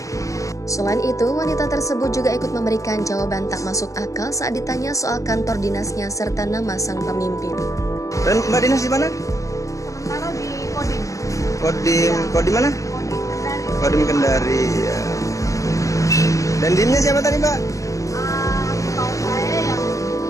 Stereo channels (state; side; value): late; right; 0.16 ms